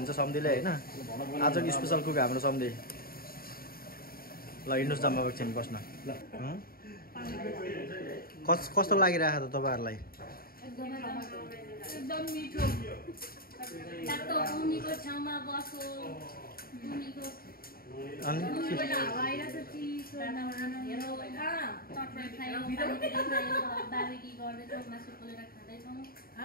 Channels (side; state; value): right; late; 0.43 ms